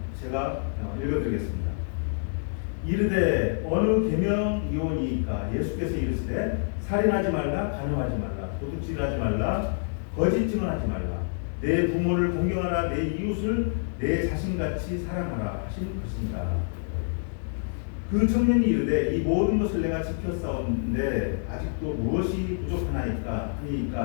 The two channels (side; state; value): right; silent; digital silence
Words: 제가 읽어드리겠습니다. 이르되 어느 계명이오니이까 예수께서 이르시되 살인하지 말라, 간음하지 말라, 도둑질하지 말라, 거짓 증언하지 말라, 내 부모를 공경하라, 내 이웃을 내 자신같이 사랑하라 하시는 것입니다. 그 청년이 이르되 이 모든 것을 내가 지켰사온데 아직도 무엇이 부족하나이까